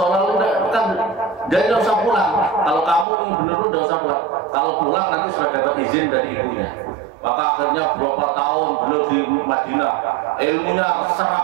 kan jadi nggak usah pulang. Kalau kamu benar nggak usah pulang. Kalau pulang nanti sudah dapat izin dari ibunya. Maka akhirnya berapa tahun beliau di Madinah, ilmunya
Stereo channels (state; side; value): drops out; left; at 3.1 s